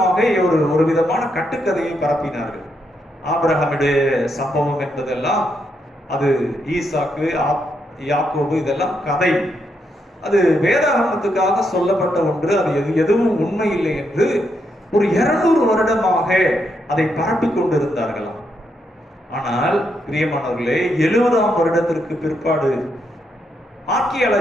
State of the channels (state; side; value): normal; both; correlation 0.79